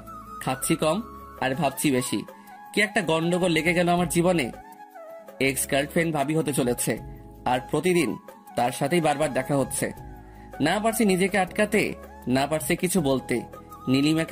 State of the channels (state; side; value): identical; both; correlation 1.00